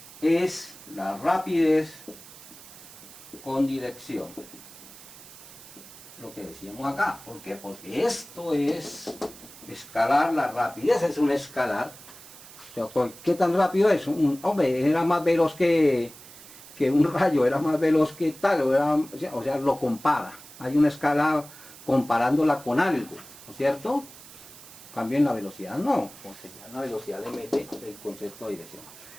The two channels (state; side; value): noise; right; hiss, 18 dB below the sound